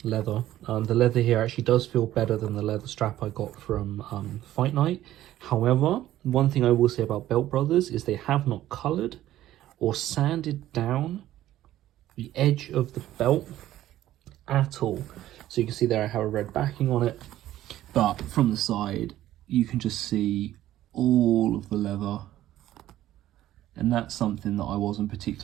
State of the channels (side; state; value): left; quieter; 13.7 dB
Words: leather. The leather here actually does feel better than the leather strap I got from Fight Night. However, one thing I will say about Belt Brothers is they have not coloured or sanded down the edge of the belt at all. So you can see there I have a red backing on it, but from the side you can just see all of the leather, and that's something that I wasn't